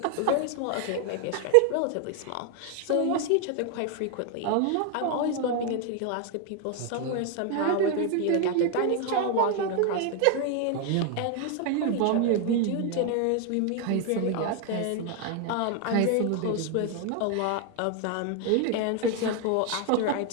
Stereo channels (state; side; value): different; both; correlation 0.00